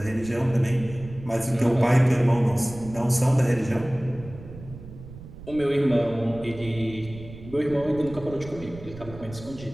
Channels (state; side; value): noise; right; rumble, 15 dB below the sound